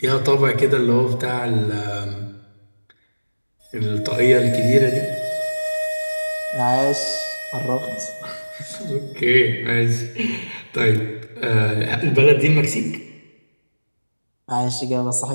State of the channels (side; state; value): both; inverted; correlation -1.00